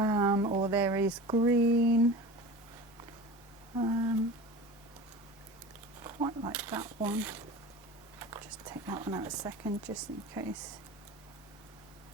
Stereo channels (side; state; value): both; normal; correlation 0.35